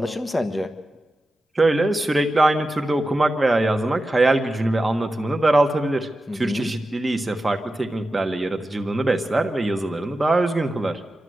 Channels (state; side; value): normal; both; correlation 0.92